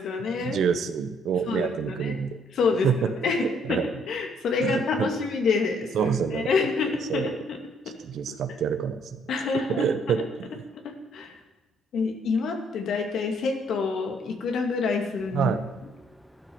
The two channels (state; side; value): normal; both; correlation 0.66